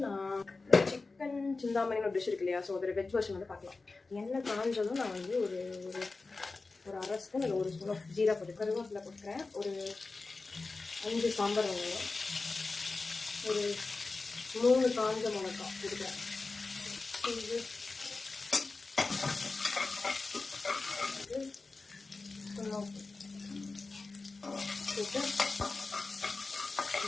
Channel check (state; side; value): quieter; right; 3.8 dB